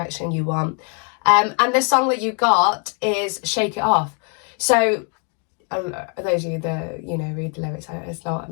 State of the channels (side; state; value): right; quieter; 39.4 dB